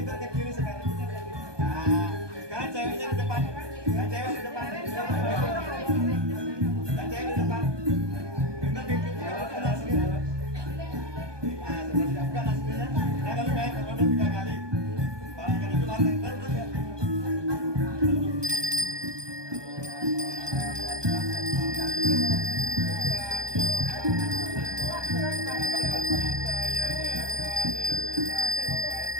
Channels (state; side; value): late; left; 1.2 ms